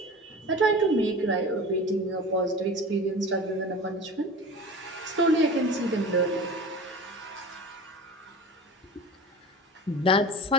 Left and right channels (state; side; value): normal; both; correlation 0.35